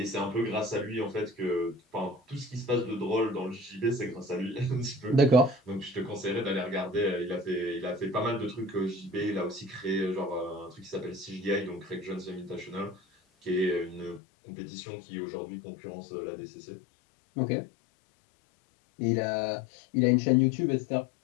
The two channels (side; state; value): right; drops out; at 14.2 s